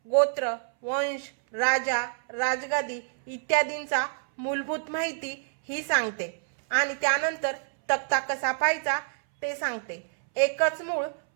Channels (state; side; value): silent; left; 60 dB below the other